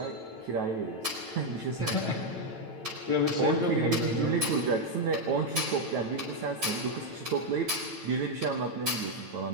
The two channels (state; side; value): late; left; 9.1 ms